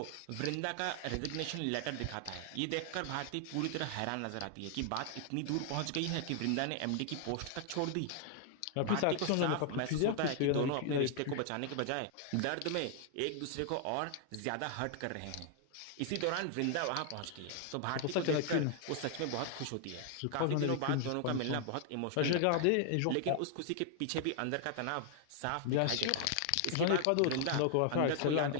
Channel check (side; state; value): both; different; correlation 0.00